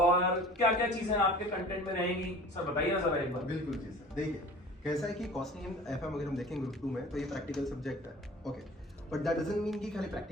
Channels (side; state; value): both; normal; correlation 0.43